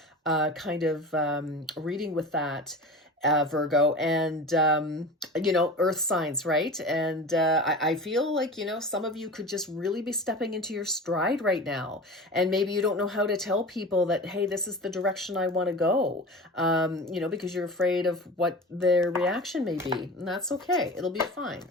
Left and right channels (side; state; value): both; normal; correlation 0.33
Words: kind of reading with that, Virgo, and, earth signs, right? And I feel like, some of you could just really be stepping into your stride right now. And maybe you don't know how to tell people that, hey, this is the direction I want to go, because you're afraid of what their reaction may be. And that's okay. It'll be fine.